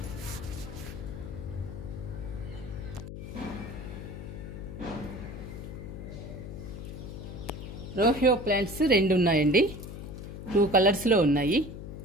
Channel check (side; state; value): left; noise; hum, 9 dB below the sound